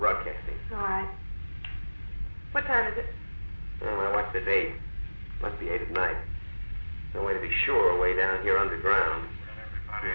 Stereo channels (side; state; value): both; inverted; correlation -1.00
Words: All right. What time is it? Well, I watched the date. Must be 8 at night. No way to be sure way down here underground. Well,